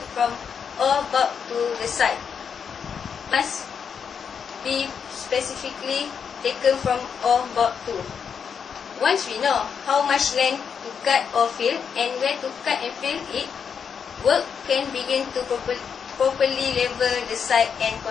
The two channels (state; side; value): quieter; right; 6.9 dB